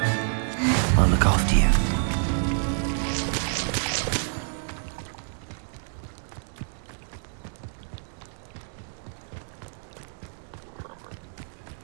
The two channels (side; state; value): left; silent; digital silence